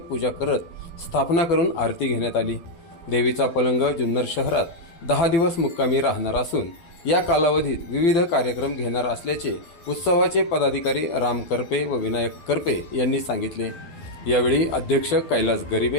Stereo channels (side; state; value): right; late; 12 ms